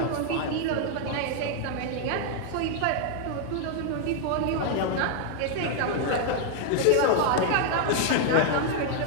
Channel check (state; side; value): different; both; correlation 0.00